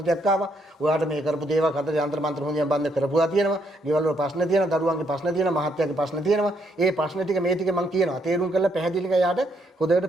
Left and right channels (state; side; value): normal; both; correlation 0.73